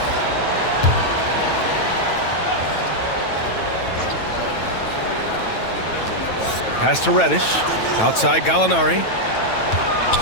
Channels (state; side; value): late; right; 9.1 ms